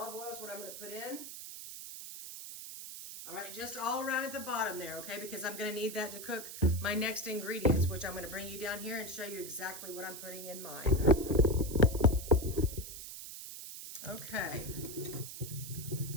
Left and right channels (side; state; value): right; noise; hiss, 10 dB below the sound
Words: oil is what I'm going to put in. All right, just all around at the bottom there, okay? Because I'm going to need that to cook my next ingredients, which I'm going to bring you down here and show you exactly what I'm putting in mine. Okay.